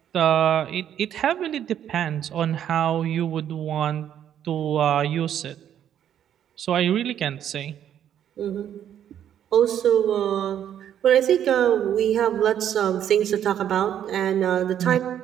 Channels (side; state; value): left; quieter; 10.0 dB